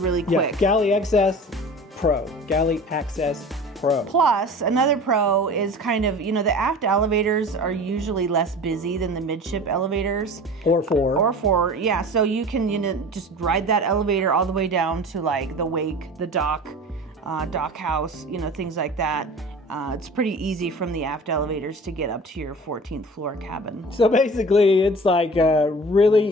quick. Yeah, Galley Access Pro. Galley Access Pro. Plus, another pro is kind of, the aft elevators are usually less busy than the midship elevators. Or four. Yeah, so you can, just ride that elevator all the way down to the wake, the dock house, things like that. It's pretty easy from the aft elevators to get up to your 14th floor cabin. So basically, it's really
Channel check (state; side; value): normal; both; correlation 0.39